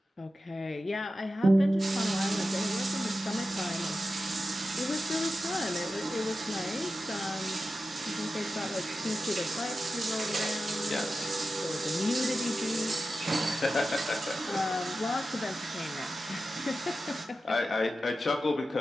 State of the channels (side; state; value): both; normal; correlation 0.92